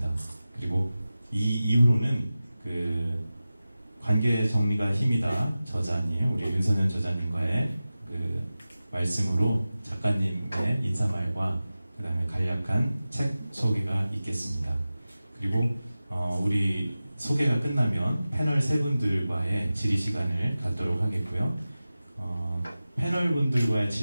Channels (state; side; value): inverted; both; correlation -0.95